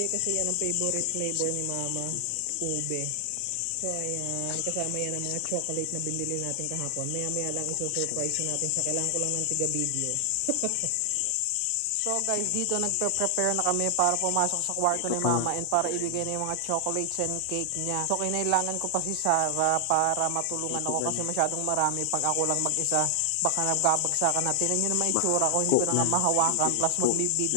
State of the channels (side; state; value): both; different; correlation 0.00